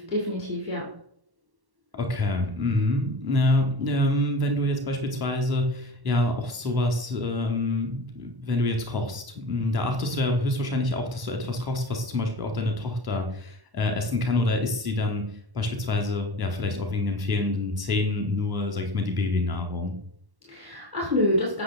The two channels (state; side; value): late; left; 1.1 ms